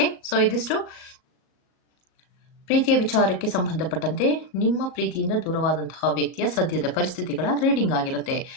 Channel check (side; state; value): right; late; 38 ms